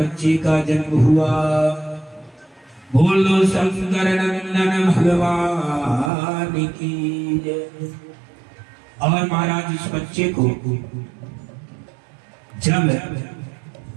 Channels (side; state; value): left; drops out; at 6.1 s